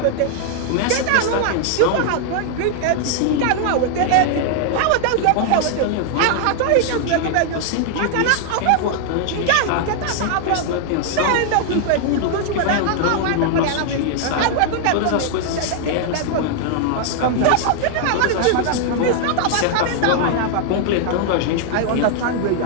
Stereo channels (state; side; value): different; both; correlation 0.00